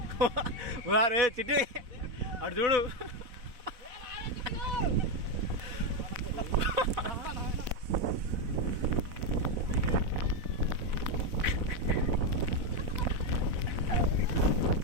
రే చిట్టి అటు చూడు.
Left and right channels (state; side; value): late; left; 4.0 ms